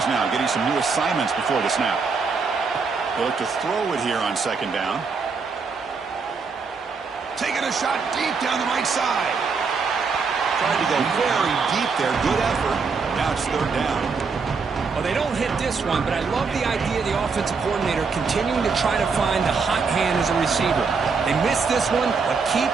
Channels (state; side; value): quieter; left; 5.0 dB